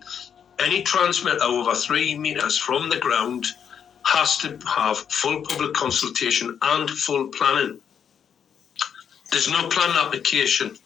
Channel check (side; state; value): right; quieter; 7.9 dB